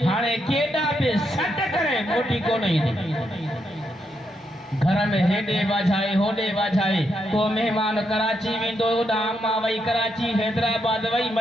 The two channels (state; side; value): normal; both; correlation 0.80